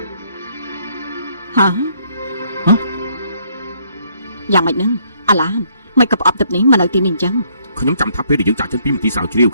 ហ៎យ៉ាងម៉េចនឹងអាឡានមិនក៏ប្រអប់ទឹកនេះមកនៅទីនេះអញ្ចឹង ខ្ញុំចាំថាពេលដែលយើងចាក់ចេញពីមន្ទីរស្រាវជ្រាវ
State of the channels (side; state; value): both; inverted; correlation -0.67